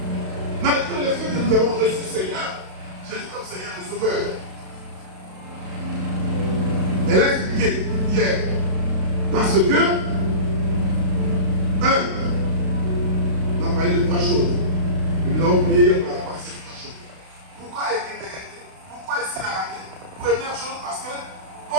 Malgré le fait que nous avons reçu le Seigneur, Jésus comme Seigneur et Sauveur. Elle a expliqué hier. Parce que, on a parlé de 3 choses. Et nous avons prié hier par rapport à ces 3 choses. Pourquoi est-il décrété? Pourquoi est-il arrêté? Première chose, parce que quand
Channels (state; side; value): late; left; 32 ms